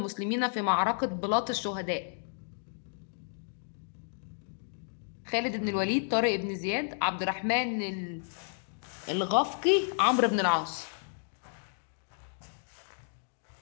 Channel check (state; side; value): silent; right; digital silence